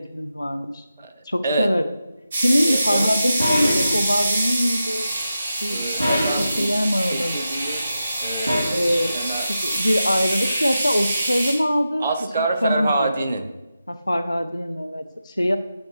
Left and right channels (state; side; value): inverted; both; correlation -0.90